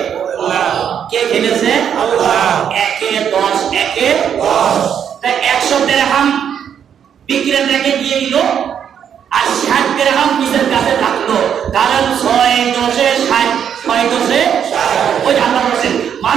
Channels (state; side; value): quieter; left; 8.4 dB